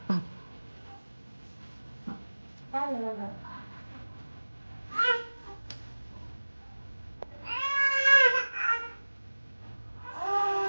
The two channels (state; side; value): inverted; both; correlation -1.00